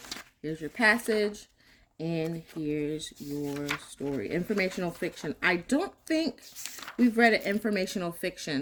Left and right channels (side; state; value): both; identical; correlation 1.00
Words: Here's your passage. And here's your story. Informational fiction. I don't think we've read an informational